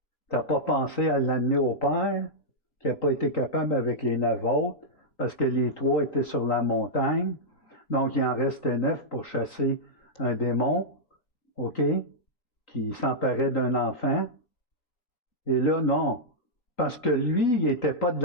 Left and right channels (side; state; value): right; late; 3.9 ms